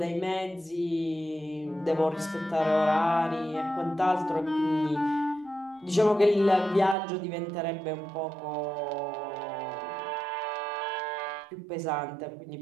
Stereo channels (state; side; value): drops out; left; at 7.0 s